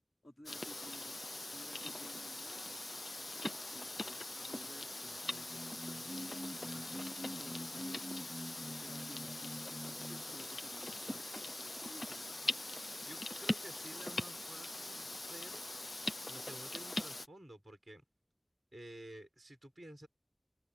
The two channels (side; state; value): both; normal; correlation 0.96